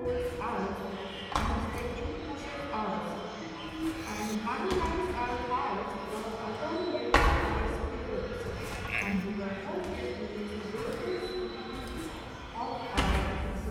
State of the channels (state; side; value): identical; both; correlation 1.00